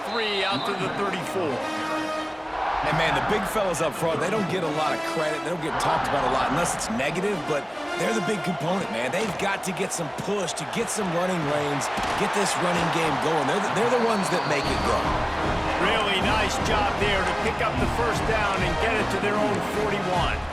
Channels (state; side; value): identical; both; correlation 1.00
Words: 3 out to the 34. And, man, the big fellas up front, they don't get a lot of credit. They don't get talked about a lot unless it's negative, but they're the big component, man. They've got to get some push, to get some running lanes, get this running game going. They're the ones that make it go. Really nice job there to pick up the 1st down and get it to their own 41.